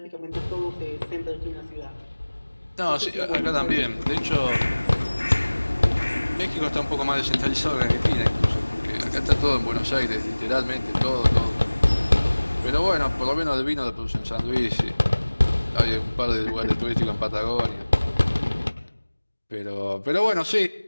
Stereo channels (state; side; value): inverted; both; correlation -1.00